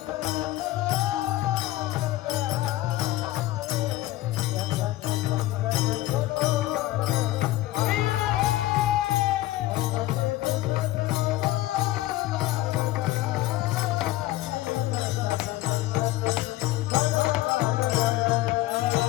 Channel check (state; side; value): quieter; right; 16.6 dB